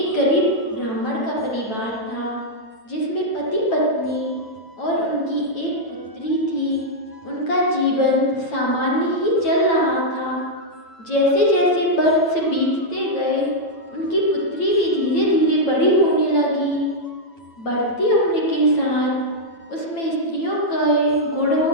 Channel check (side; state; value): right; late; 9.0 ms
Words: गरीब ब्राह्मण का परिवार था, जिसमें पति पत्नी और उनकी एक पुत्री थी। उनका जीवन सामान्य ही चल रहा था। जैसे जैसे वर्ष बीतते गए, उनकी पुत्री भी धीरे धीरे बड़ी होने लगी। बढ़ती उम्र के साथ उसमें स्त्रियों के